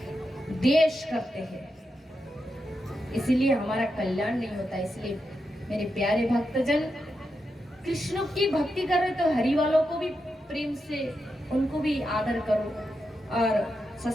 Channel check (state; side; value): normal; both; correlation 0.86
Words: देश करते हैं, इसीलिए हमारा कल्याण नहीं होता। इसलिए मेरे प्यारे भक्तजन, कृष्ण की भक्ति कर रहे तो हरि वालों को भी प्रेम से, उनको भी आदर करो। और